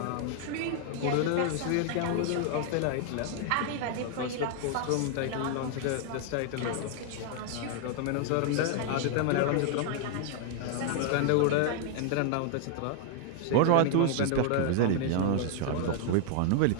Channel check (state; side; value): different; both; correlation 0.00